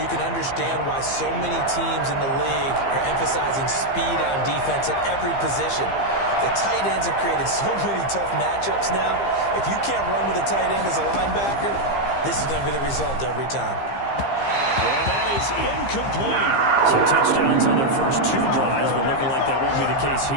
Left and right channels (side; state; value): right; late; 15 ms